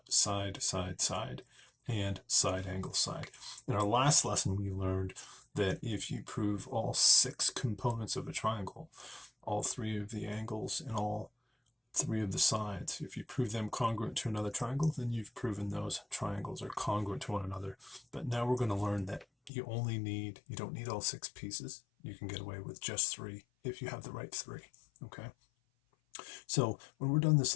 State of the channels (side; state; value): right; drops out; at 19.5 s